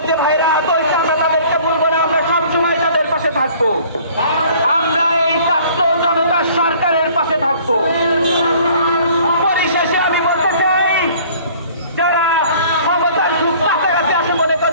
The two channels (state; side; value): inverted; both; correlation -0.52